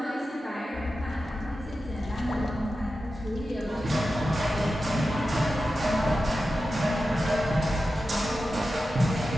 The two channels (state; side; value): normal; both; correlation 0.92